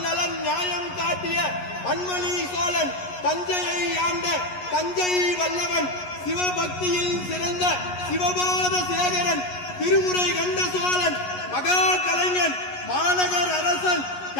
நலன் நியாயம் காட்டிய பன்மணி சோழன், தஞ்சையை ஆண்ட தஞ்சை வல்லவன், சிவபக்தியில் சிறந்த சிவபாத சேகரன், திருமுறை கண்ட சோழன், மகா கலைஞன், மாநகர் அரசன்,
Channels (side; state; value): right; late; 11 ms